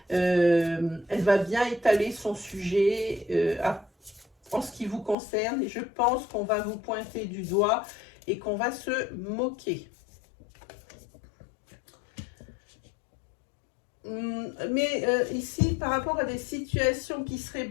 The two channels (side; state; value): right; drops out; at 5.2 s